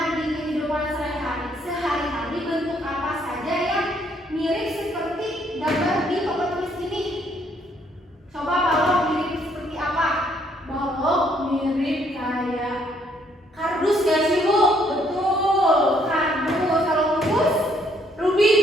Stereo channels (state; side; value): normal; both; correlation 0.68